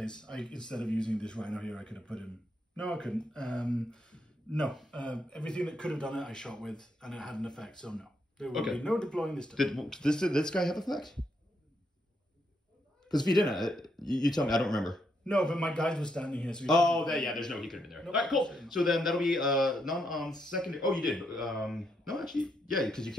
Instead of using this rhino here, I could have put him. No, I couldn't. No. Everything that could have done it, I shot with, and it had an effect. So no, there would be no deploying this turn. Did this guy have effect? Because if he didn't, you tell me. I don't remember. No, but my guide was standing here. So there's no, he could have been there. Nope. All right, cool. So then that'll be none on secondary. Oh, you did. No, actually, yeah, because you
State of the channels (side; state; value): both; normal; correlation 0.78